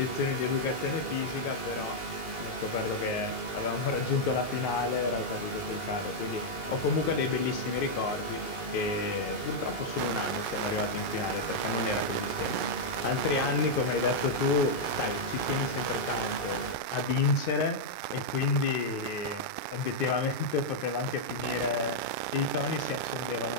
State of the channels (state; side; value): late; right; 2.8 ms